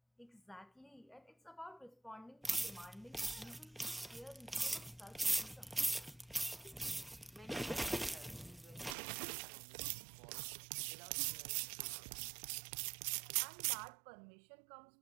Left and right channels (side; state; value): left; drops out; at 9.0 s